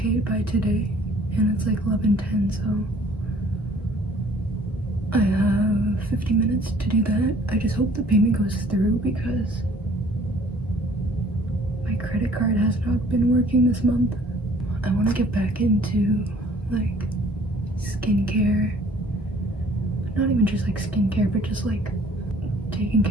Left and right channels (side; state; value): both; normal; correlation 0.56